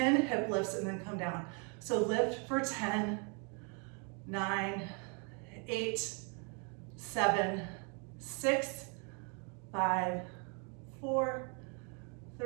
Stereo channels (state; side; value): quieter; left; 36.6 dB